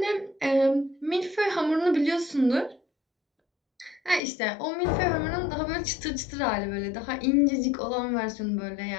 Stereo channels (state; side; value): drops out; right; at 4.2 s